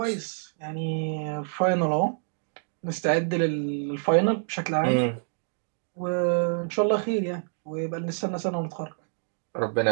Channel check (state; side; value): silent; left; digital silence